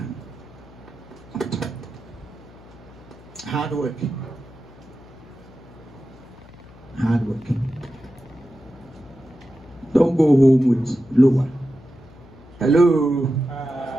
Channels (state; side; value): noise; left; hum, 22 dB below the sound